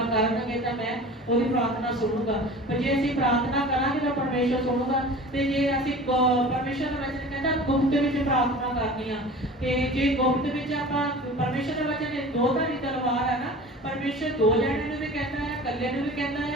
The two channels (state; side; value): normal; both; correlation 0.39